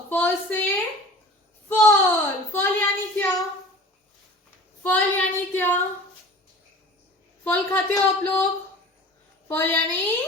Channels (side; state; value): both; normal; correlation 0.41